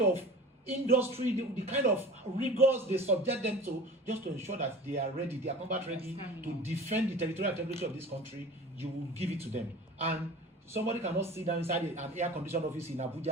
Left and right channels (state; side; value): normal; both; correlation 0.38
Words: industry, the kind of rigors they subject them to, just to ensure that they are ready, they are combat ready to defend the territorial integrity of this country, you will give it to them. And somebody cannot sit down inside an air-conditioned office in